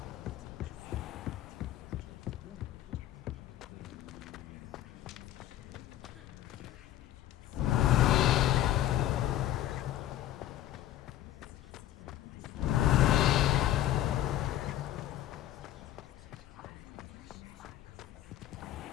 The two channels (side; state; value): right; quieter; 13.0 dB